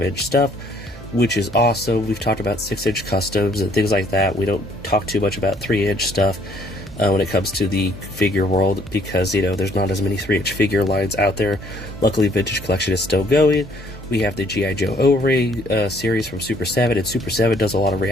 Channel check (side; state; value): both; normal; correlation 0.63